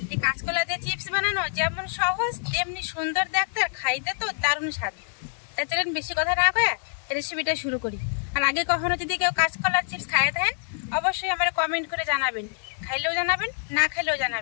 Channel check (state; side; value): silent; right; digital silence